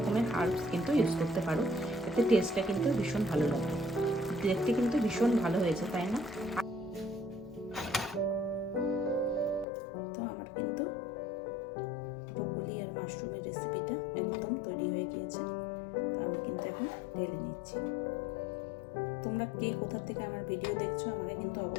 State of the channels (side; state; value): right; drops out; at 9.7 s